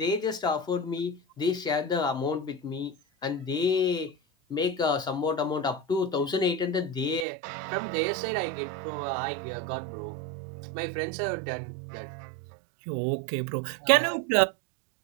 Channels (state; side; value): drops out; left; at 7.2 s